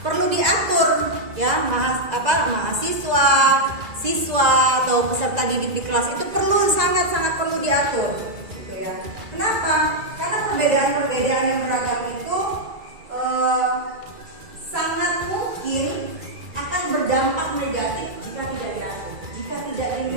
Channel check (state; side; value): late; left; 2.0 ms